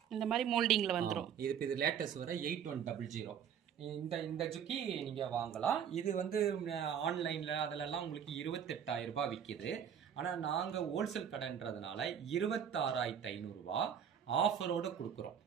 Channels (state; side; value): quieter; left; 8.4 dB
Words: இந்த மாரி மோல்டிங்ல வந்துரும். இது லேட்டஸ்ட் வர 8100. இந்த இந்த ஜுக்கி நீங்கள் வாங்கலாம். இது வந்து ஆன்லைனில் அதிலெல்லாம் உங்களுக்கு 28,000 ரூபாய் விற்கிது. ஆனால் நாங்கள் ஹோல்சேல் கடைன்றதுனால 26,500 ஆஃபரோடு கொடுக்குறோம்.